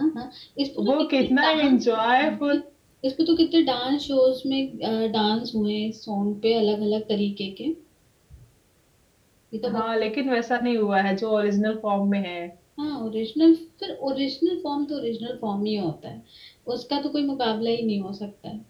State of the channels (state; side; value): identical; both; correlation 1.00